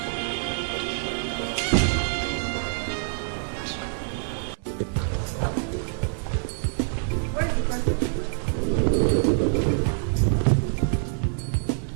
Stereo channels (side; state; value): left; silent; 61 dB below the other